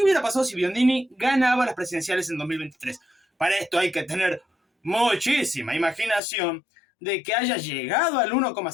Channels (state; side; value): drops out; right; at 6.2 s